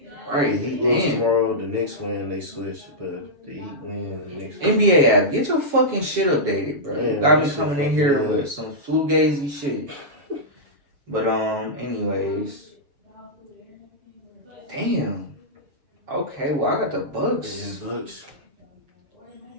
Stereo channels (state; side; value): late; left; 7.2 ms